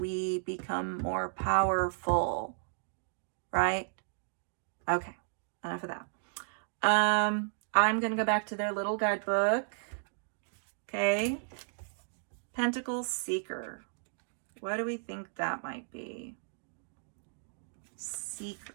become more powerful, right? Okay, enough of that. I'm going to go back to their little guidebook. Okay. Pentacle Seeker. What do we think that might be? Seeker.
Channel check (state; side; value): silent; left; digital silence